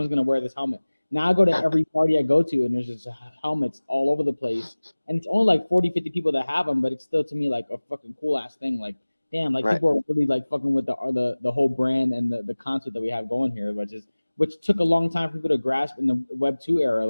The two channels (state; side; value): inverted; both; correlation -1.00